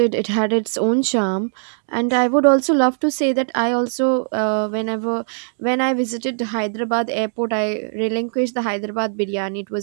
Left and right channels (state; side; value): silent; left; digital silence